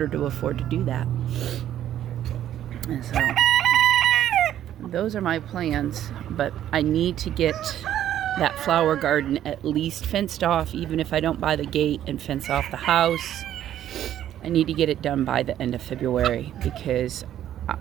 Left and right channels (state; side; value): quieter; left; 11.4 dB